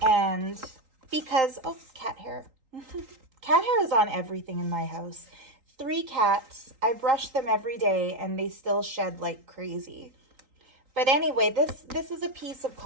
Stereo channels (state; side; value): late; left; 3.8 ms